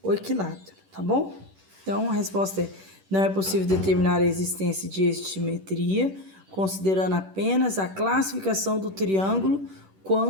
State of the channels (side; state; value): left; late; 10 ms